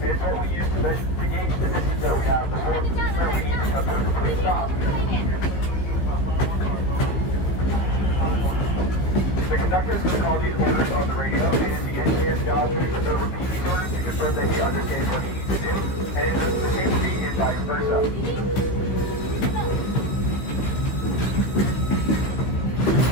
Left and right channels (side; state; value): right; late; 16 ms